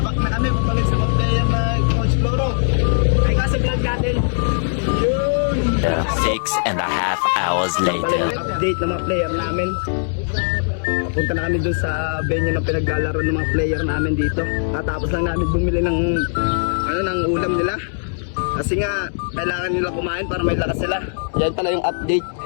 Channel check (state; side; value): silent; right; 66 dB below the other